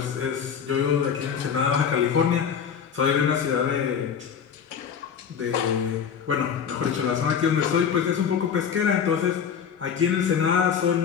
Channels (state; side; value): quieter; right; 7.4 dB